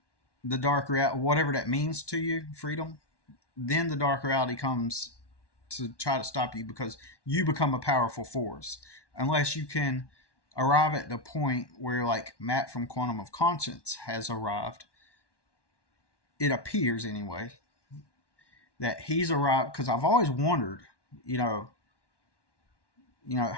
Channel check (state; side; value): late; right; 1.1 ms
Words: the dark reality, whatever that means to you, freedom, then the dark reality comes to try to stop you, because you become a powerful force. Unless you can arrive at the point where, like Matt from Quantum of Conscience has arrived, it appears anyway, that he's arrived. Because I've always wondered, you know,